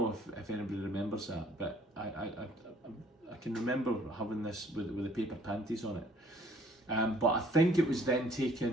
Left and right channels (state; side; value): normal; both; correlation 0.59